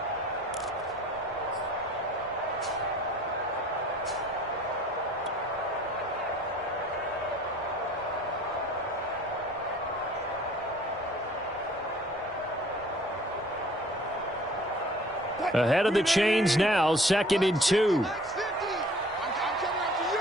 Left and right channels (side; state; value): both; normal; correlation 0.52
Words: Ahead of the chains now, 2nd and 2.